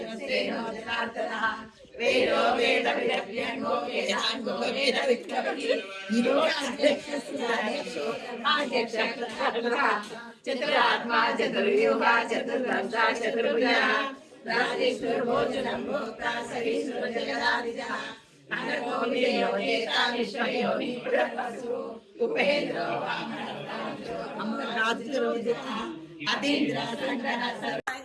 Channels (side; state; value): both; identical; correlation 1.00